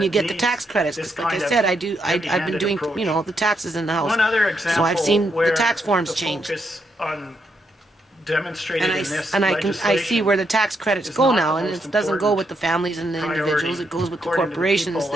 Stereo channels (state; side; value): normal; both; correlation 0.79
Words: you get the tax credits. Because like I said, I've been doing, you know, the taxes in the house. So I've seen the tax forms change. And I see where the tax credits go now, and it doesn't go with the families and the individuals. It goes with the corporations